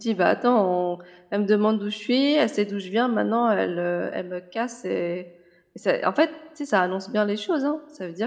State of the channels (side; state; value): both; identical; correlation 1.00